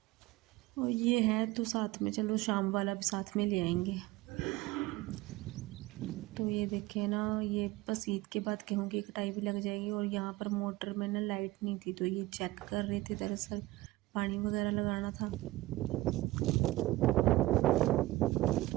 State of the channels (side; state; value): left; quieter; 18.8 dB